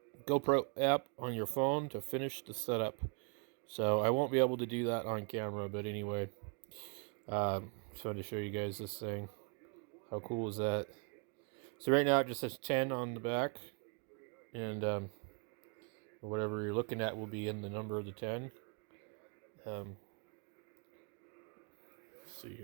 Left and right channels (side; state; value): left; quieter; 36.3 dB